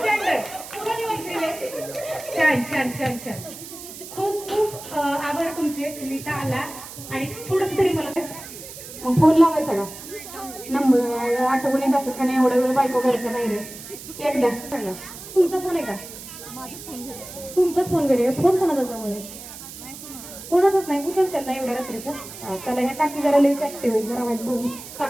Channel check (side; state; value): right; noise; hiss, 13 dB below the sound